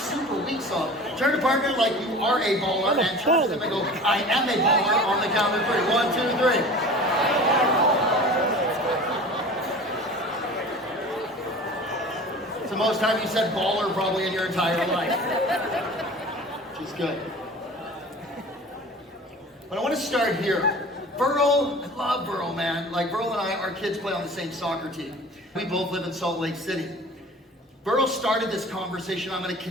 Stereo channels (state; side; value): normal; both; correlation 0.40